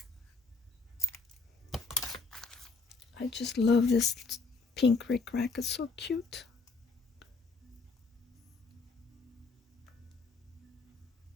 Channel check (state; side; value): quieter; right; 4.0 dB